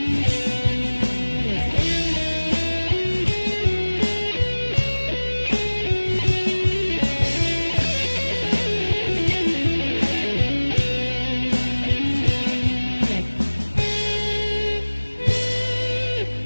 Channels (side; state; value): both; inverted; correlation -1.00